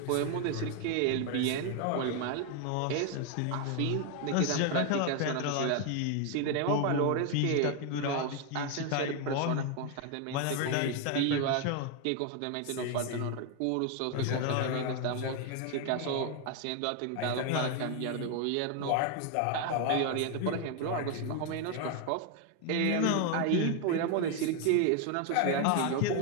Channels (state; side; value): different; both; correlation 0.01